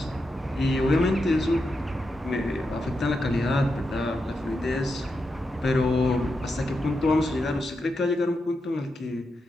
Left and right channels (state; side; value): normal; both; correlation 0.86